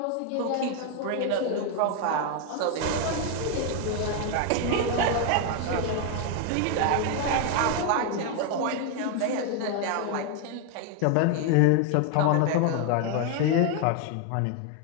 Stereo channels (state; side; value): different; both; correlation 0.00